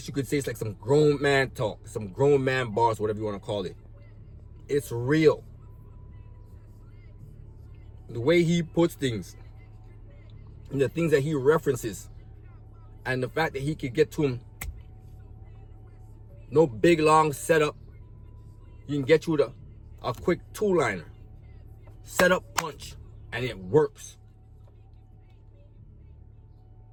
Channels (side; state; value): both; identical; correlation 1.00